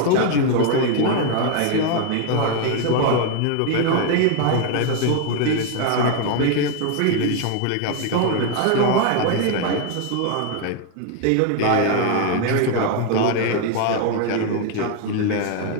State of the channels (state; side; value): different; both; correlation 0.00